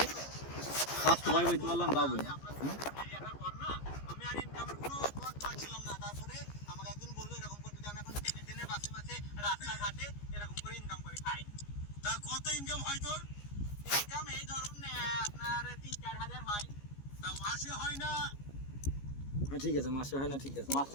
কাজ তো ভাই বলতে পারলাম বাবু আমি আর ইনকামের কোনো পথ পাচ্ছিলাম না তারপরে আমাকে একজন বললো এরকম করতে যে আমি এখন টেনে বাসে রাস্তাঘাটে এরকম করে ইনকাম করে খাই। তা কত ইনকাম হয় তোর? ইনকাম এই ধরুন আপনার 3-4 হাজার হয় তা মাসে হয় না? ঠিক আছে মাসে হয় না ঠিক আছে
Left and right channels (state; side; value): late; right; 15 ms